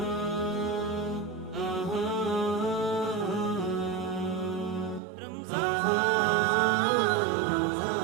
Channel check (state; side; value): drops out; left; at 5.0 s